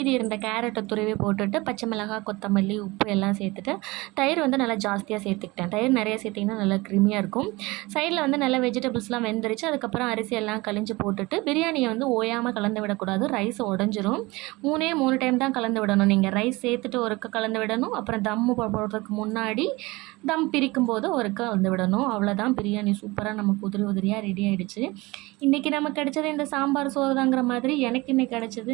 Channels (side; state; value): left; quieter; 22.6 dB